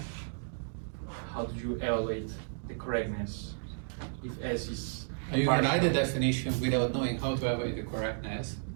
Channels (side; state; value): left; silent; digital silence